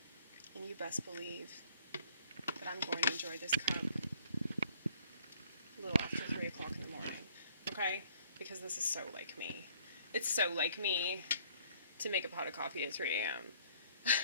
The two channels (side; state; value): both; inverted; correlation -0.60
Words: And you best believe that I'm going to enjoy this cup a little after 3 o'clock in the morning. Okay? Because this is so like me. It's so like me to make a pot of coffee at 3 a.m.